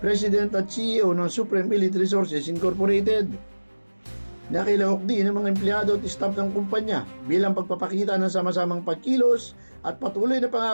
President at CEO ng Supreme Elite Resources Incorporated. Nakilahok din ng mga empleyado at staff ng kumpanya bilang pagpapakita ng sama-samang pagkilos at patuloy na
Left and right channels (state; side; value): inverted; both; correlation -1.00